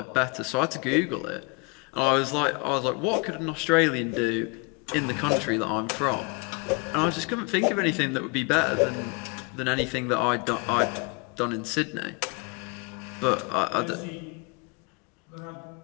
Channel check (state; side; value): quieter; right; 30.1 dB